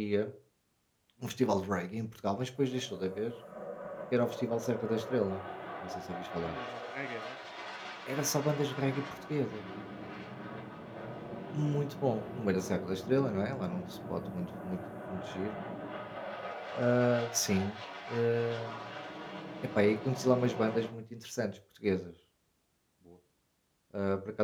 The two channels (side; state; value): both; identical; correlation 1.00